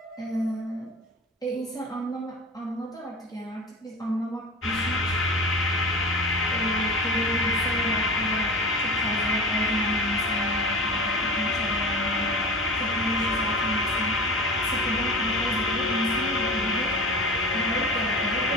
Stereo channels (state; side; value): normal; both; correlation 0.33